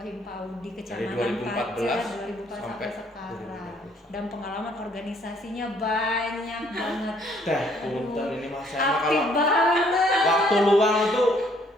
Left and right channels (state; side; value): normal; both; correlation 0.64